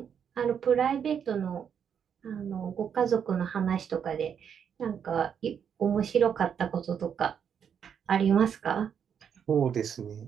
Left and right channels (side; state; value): left; quieter; 7.8 dB